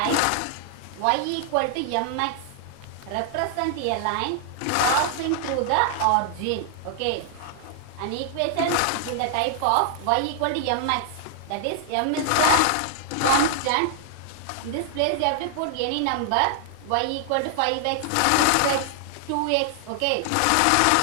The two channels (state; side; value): different; both; correlation 0.00